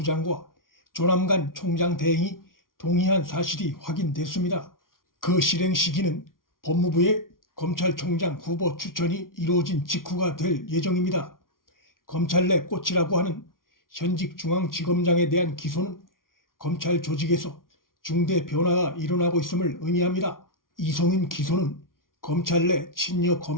조남관 총장 대행이 동의한 사실이 확인됐습니다. 그 실행 시기는 법무부의 검찰총장 후보 추천이 이루어진 직후가 될 예정입니다. 검찰 내 꽃이라고 하는 현직 중앙지검장에 대한 기소는 검찰 조직에서 중대 변화가 일어나고 있음을 의미합니다. 이성윤 기소는 검찰 내 친여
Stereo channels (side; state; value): right; late; 0.91 ms